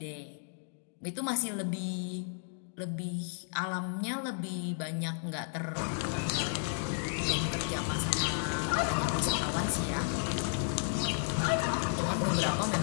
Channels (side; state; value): right; silent; digital silence